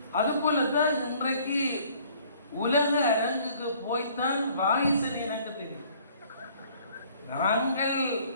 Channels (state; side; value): inverted; both; correlation -0.57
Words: அதுபோல தான் இன்றைக்கு உலக அரங்குக்கு போய்த்தான் வாகீசன் எனக்கு தெரியும். நாங்கள்